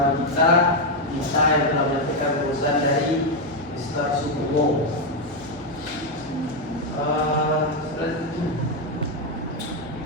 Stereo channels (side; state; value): both; normal; correlation 0.03